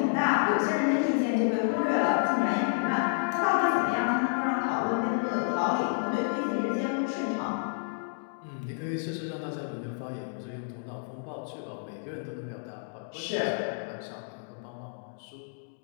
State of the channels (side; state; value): right; silent; digital silence